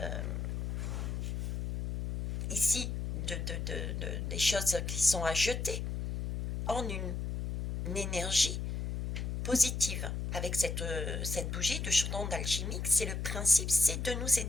ici, des choses qui sont à jeter en une énergie positive. Avec cette bougie de chaudron d'alchimique, c'est le principe, c'est de nous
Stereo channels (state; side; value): noise; left; hum, 3 dB below the sound